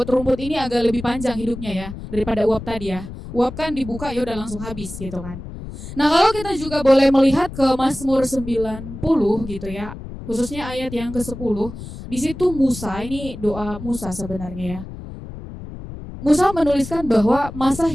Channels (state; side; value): noise; left; rumble, 11 dB below the sound